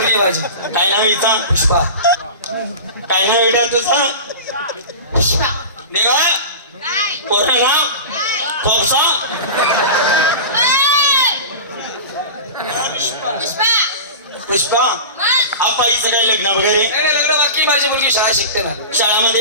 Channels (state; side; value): inverted; both; correlation -0.30